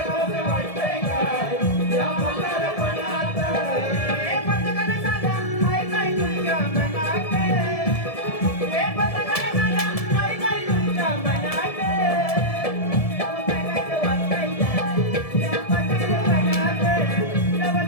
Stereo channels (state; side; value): late; right; 1.7 ms